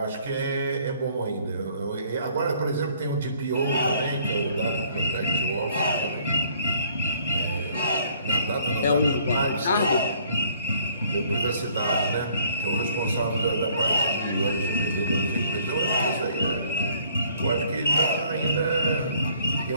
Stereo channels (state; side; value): inverted; both; correlation -0.61